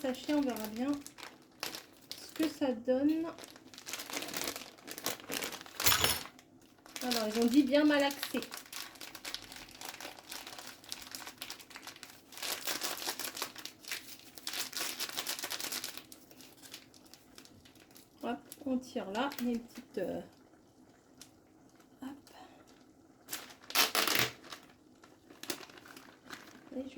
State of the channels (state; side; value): identical; both; correlation 1.00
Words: on verra bien ce que ça donne. Alors ils ont dit bien malaxé. Hop, on tire là, il y a une petite hop. Et